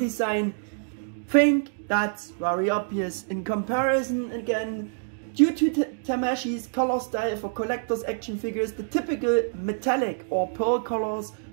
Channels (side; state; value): left; silent; digital silence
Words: Think that's very obvious. In comparison, again, due to Tamashii's color style for collectors action figures, the typical metallic or pearl colors